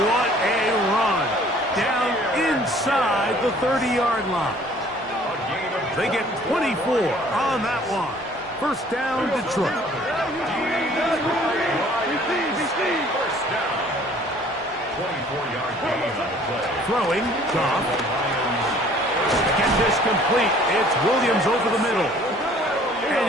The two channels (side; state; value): both; normal; correlation 0.55